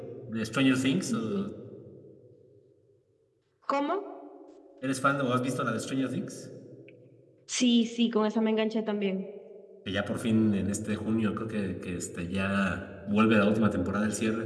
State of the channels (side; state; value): both; identical; correlation 1.00